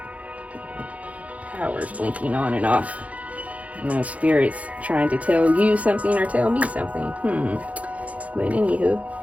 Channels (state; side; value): late; left; 0.067 ms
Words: Power's blinking on and off. Spirit's trying to tell you something or tell me something. But anywho,